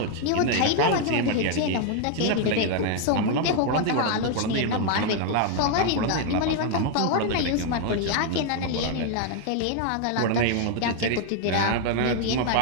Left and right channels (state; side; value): different; both; correlation 0.00